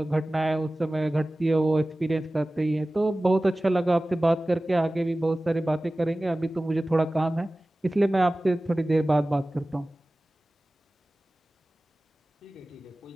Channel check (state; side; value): normal; both; correlation 0.97